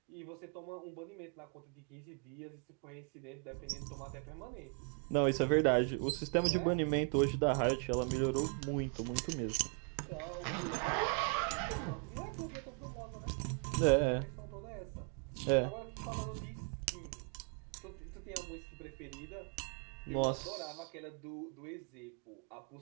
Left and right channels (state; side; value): quieter; left; 38.3 dB